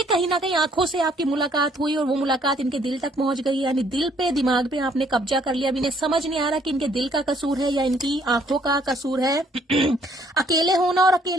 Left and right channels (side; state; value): both; normal; correlation 0.65